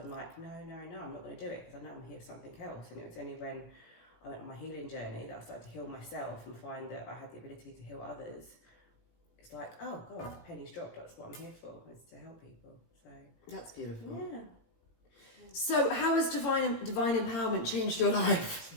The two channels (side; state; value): right; late; 18 ms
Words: like, no, I'm not going to do it because I know I'm here for something else. And it was only when I went on my healing journey that I started to heal myself and find that I had the ability to heal others. It's like, oh God, pennies dropped. That's what I'm here for, is to help people. So that's beautiful. Yeah. So how has divine empowerment changed your life?